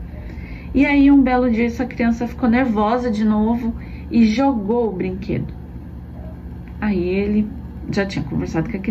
E aí um belo dia essa criança ficou nervosa de novo e jogou o brinquedo. Aí ele já tinha conversado com a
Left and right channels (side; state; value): both; identical; correlation 1.00